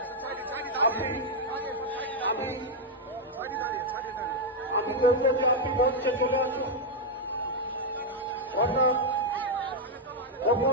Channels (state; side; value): normal; both; correlation -0.01